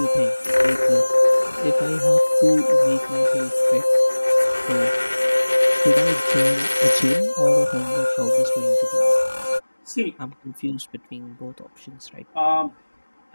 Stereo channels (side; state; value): both; inverted; correlation -1.00